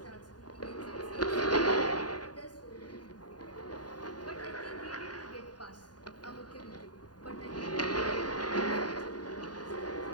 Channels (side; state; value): right; late; 0.70 ms